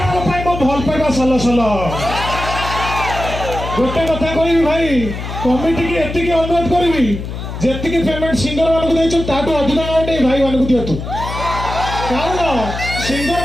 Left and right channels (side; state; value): left; noise; hum, 7 dB below the sound